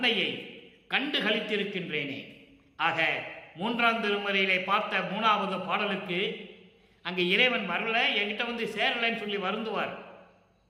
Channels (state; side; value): identical; both; correlation 1.00